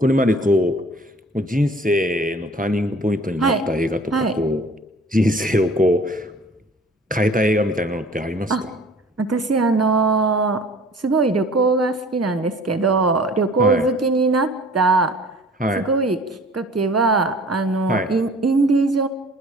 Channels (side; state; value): both; normal; correlation 0.48